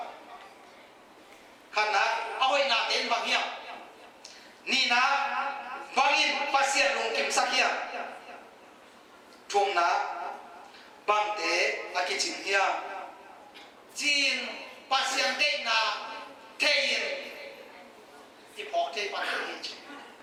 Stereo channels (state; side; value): identical; both; correlation 1.00